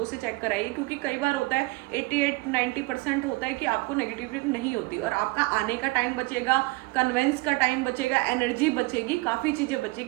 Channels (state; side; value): quieter; left; 23.3 dB